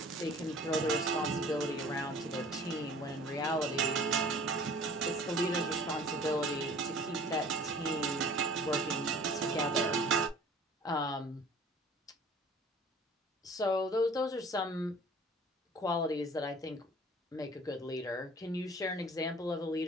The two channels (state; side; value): normal; both; correlation 0.48